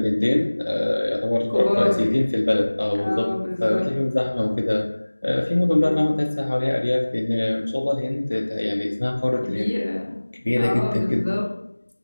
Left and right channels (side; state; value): both; inverted; correlation -1.00